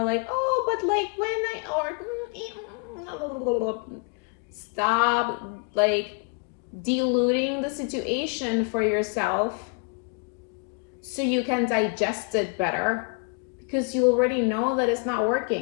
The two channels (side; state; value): right; quieter; 35.1 dB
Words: like, oh, but like when I, or stop like diluting the situation for yourself so you can digest it better, because you already know that it's not